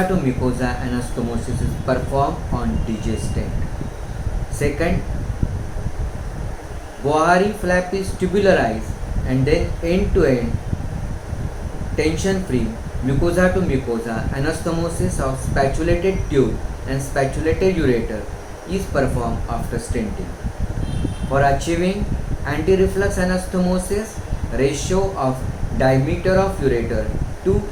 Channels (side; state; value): both; identical; correlation 1.00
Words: to mucosa anastomosis is performed on DJ stent. Second, Bohari flap is tubularized and then end to end tension free mucosa to mucosa anastomosis of spatulated tube and spatulated ureter is performed after stenting. For achieving anti-reflux anastomosis, ratio of diameter of ureter to